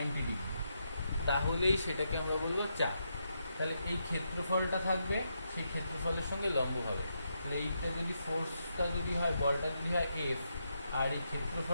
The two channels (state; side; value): inverted; both; correlation -0.82